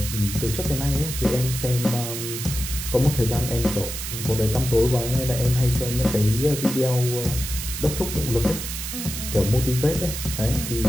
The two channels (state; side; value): noise; right; hiss, 6 dB below the sound